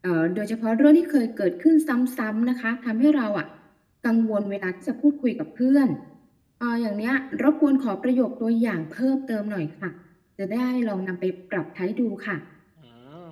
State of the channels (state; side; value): identical; both; correlation 1.00